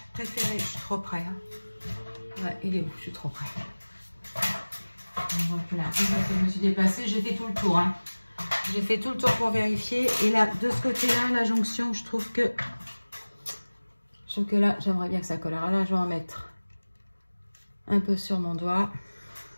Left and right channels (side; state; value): both; inverted; correlation -1.00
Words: préféré. Je suis trop près. Hein. Ouais, il est où? Je suis trop près. Je recule un peu. Je me suis déplacée. J'ai fait tout le tour. Hein. J'ai fait tout le tour pour vérifier. Et là, de ce côté-là, la jonction, je trouve que là, j'aimerais bien que ça colle. Alors là, je vais en mettre un peu sur mon doigt.